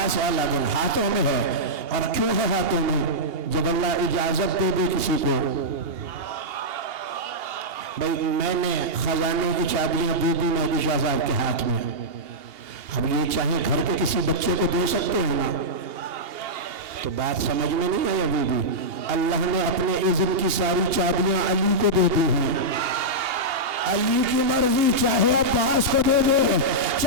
والا دن ہاتھوں میں ہے، اور کیوں ہے ہاتھوں میں؟ جب اللہ اجازت دے دے کسی کو، بھائی میں نے خزانے کی چابیاں دے دی مہدی شاہ صاحب کے ہاتھ میں، اب یہ چاہے گھر کے کسی بچے کو دے سکتے ہیں نا، تو بات سمجھ میں نہیں آئی ابھی بھی۔ اللہ نے اپنے اذن کی ساری چابیاں علی کو دے دی ہیں، علی کی مرضی، چاہے عباس کو دے دے،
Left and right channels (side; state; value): left; late; 2.8 ms